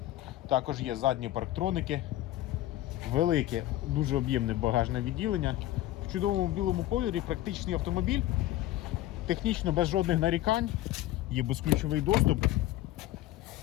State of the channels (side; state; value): right; quieter; 14.8 dB